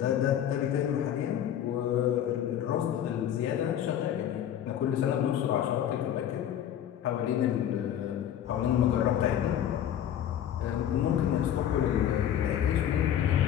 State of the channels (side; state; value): right; quieter; 10.3 dB